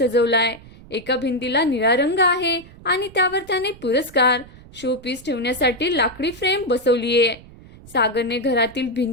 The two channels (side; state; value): right; noise; rumble, 21 dB below the sound